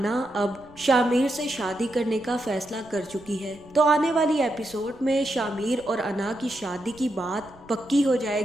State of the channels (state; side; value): noise; right; rumble, 25 dB below the sound